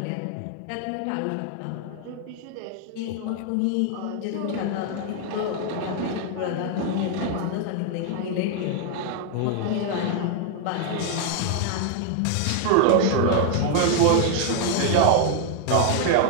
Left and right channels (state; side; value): different; both; correlation 0.00